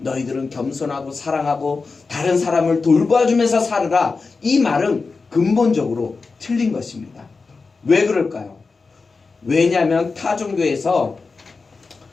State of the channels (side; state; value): right; quieter; 4.3 dB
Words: 겸손하고 사랑하고 다른 사람을 돌봐주면서 살으라, 이 말은 근본적으로 틀린 것입니다. 왜 그럴까요? 왜냐하면 타 종교에서